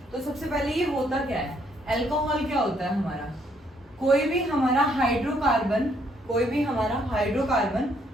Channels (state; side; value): normal; both; correlation 0.69